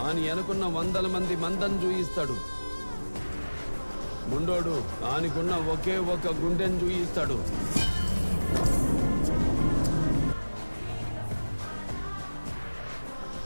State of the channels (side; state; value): both; inverted; correlation -1.00